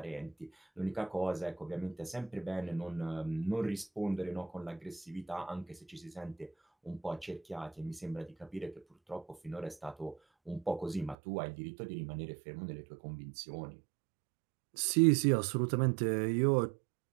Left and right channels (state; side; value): drops out; left; at 11.2 s